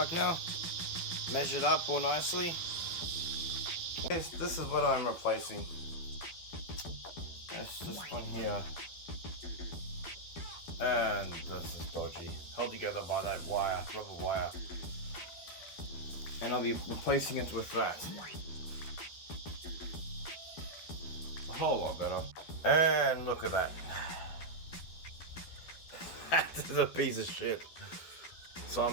now. Measured up all nicely. This is what I'm replacing. That's this one here, and this is dodgy, held together by that wire, rubber wire. And I'll be replacing it with that. A whole lot better. And look at that. That is a piece of shit. So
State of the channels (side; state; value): right; late; 12 ms